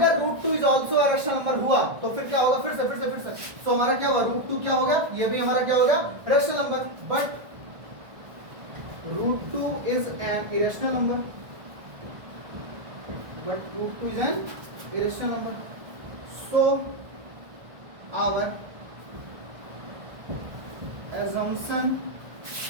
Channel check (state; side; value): late; left; 1.5 ms